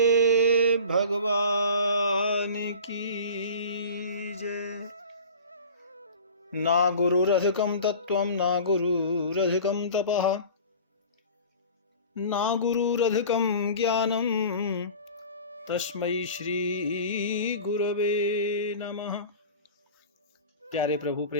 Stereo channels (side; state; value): both; inverted; correlation -0.39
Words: भगवान की जय। ना गुरुरधिकं तत्त्वं ना गुरुरधिकं तपः ना गुरुरधिकं ज्ञानं तस्मै श्री गुरवे नमः। प्यारे प्रभु